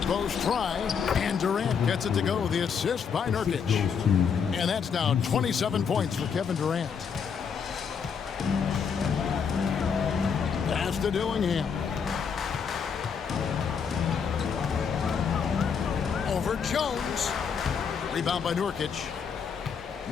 post try, and Durant gets it to go. The assist by Nurkic. And that's now 27 points for Kevin Durant. Pass to Dillingham. Over Jones. Rebound by Nurkic.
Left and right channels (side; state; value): right; quieter; 6.5 dB